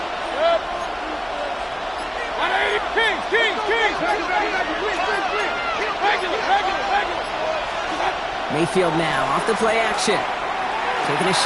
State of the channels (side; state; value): both; identical; correlation 1.00